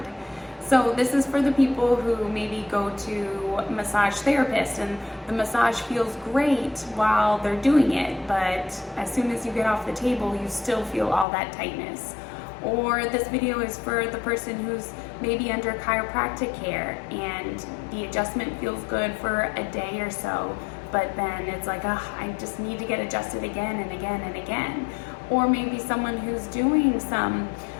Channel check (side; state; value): right; drops out; at 11.2 s